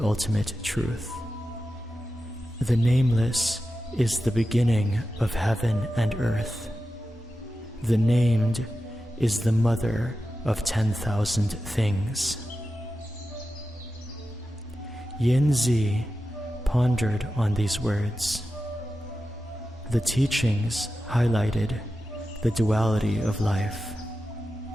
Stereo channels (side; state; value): both; normal; correlation 0.92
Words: truth. The nameless is the beginning of heaven and earth. The named is the mother of 10,000 things. Yin Zi pondered on these words. The teachings highlighted the duality of life,